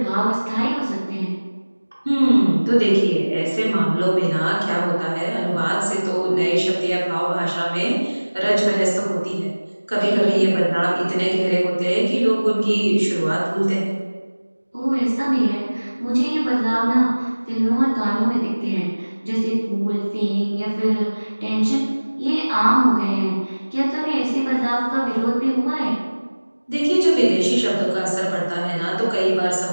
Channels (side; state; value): both; inverted; correlation -1.00